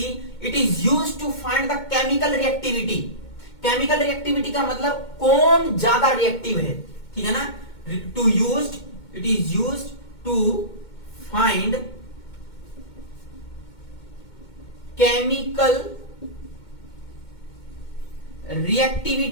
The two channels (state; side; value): late; right; 2.2 ms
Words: it is used to find the chemical reactivity. Chemical reactivity का मतलब कौन ज्यादा रिएक्टिव है, ठीक है ना। It is used to find chemical